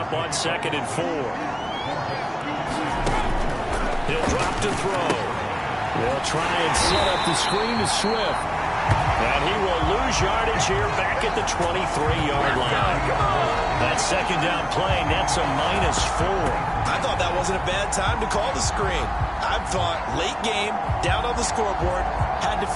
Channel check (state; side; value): identical; both; correlation 1.00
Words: on 2nd and 4. He'll drop to throw. They'll try and set up the screen to Swift. And he will lose yardage here back at the 23-yard line. That second down play, that's a -4. I thought that wasn't a bad time to call the screen. I thought late game, down on the scoreboard, had to